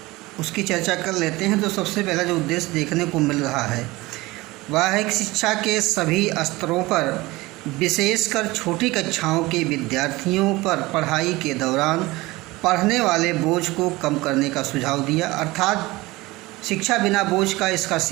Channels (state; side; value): quieter; left; 20.7 dB